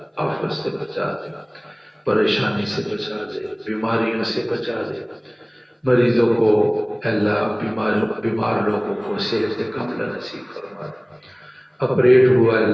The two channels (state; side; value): identical; both; correlation 1.00